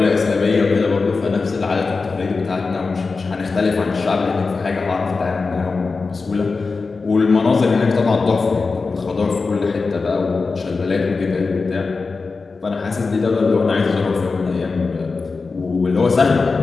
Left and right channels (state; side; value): quieter; right; 4.3 dB